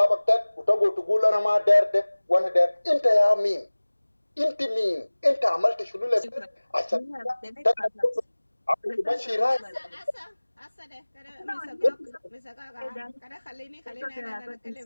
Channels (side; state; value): both; inverted; correlation -1.00